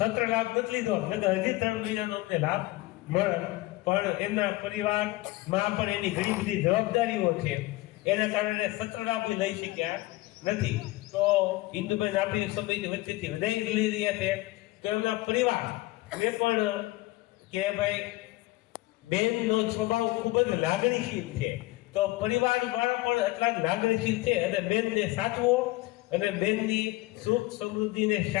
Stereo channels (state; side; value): quieter; right; 19.5 dB